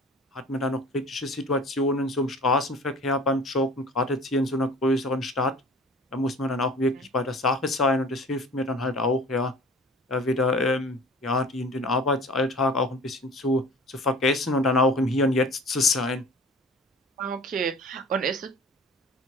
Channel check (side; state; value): both; normal; correlation 0.43